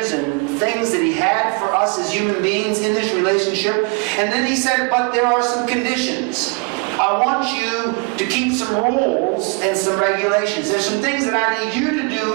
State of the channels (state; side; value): quieter; left; 31.6 dB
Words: and things that He had for us as human beings in this relationship. And then He said, but there are some conditions. I want you to keep some rules and some regulations. There's some things that I need you to